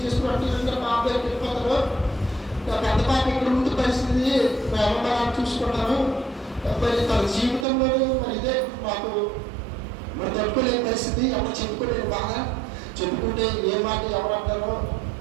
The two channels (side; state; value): left; drops out; at 7.7 s